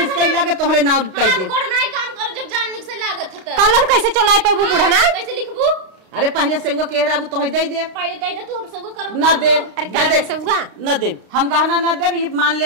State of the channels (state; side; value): late; left; 32 ms